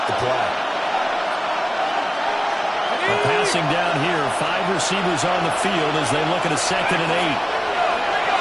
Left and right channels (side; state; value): both; identical; correlation 1.00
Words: the play. Passing down here, 5 receivers on the field as they look at a 2nd and 8.